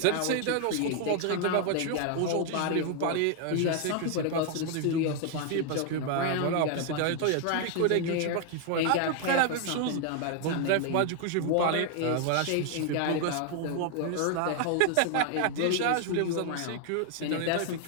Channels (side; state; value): both; different; correlation 0.00